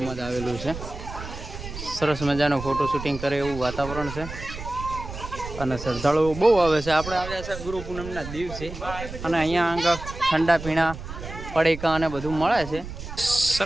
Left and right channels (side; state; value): right; noise; rumble, 10 dB below the sound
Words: જ આવેલું છે. સરસ મજાનો ફોટો શૂટિંગ કરે એવું વાતાવરણ છે અને શ્રદ્ધાળુઓ બહુ આવે છે. આપણે આવ્યા છે ગુરુ પૂનમના દિવસે અને અહીંયા આગળ ઠંડા પીણા પડીકા અને બધું મળે છે.